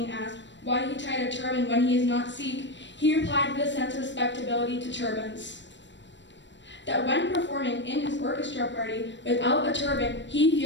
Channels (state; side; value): late; right; 0.53 ms